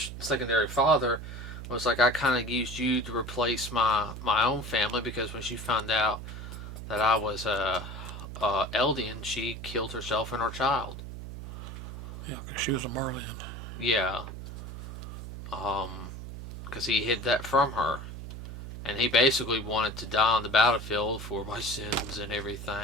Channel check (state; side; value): noise; right; hum, 9 dB below the sound